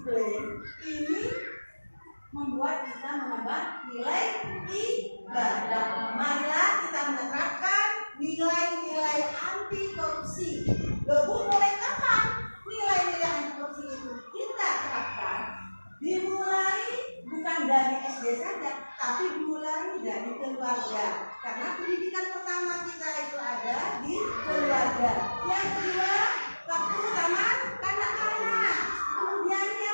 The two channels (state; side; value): inverted; both; correlation -1.00